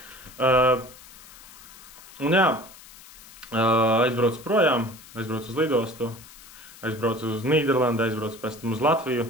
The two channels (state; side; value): noise; left; hiss, 20 dB below the sound